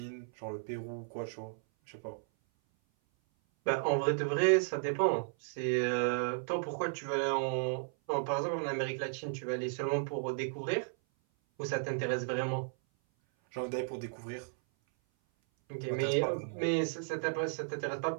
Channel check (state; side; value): silent; left; 55 dB below the other